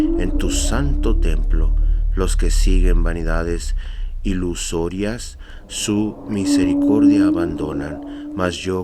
en tu santo templo. Los que siguen vanidades ilusorias, su misericordia abandonan, mas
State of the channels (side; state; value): both; identical; correlation 1.00